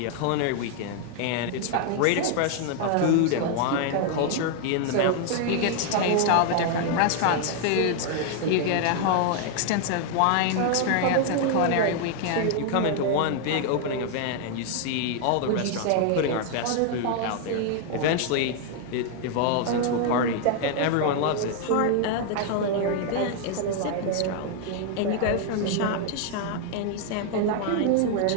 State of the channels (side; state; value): both; different; correlation 0.00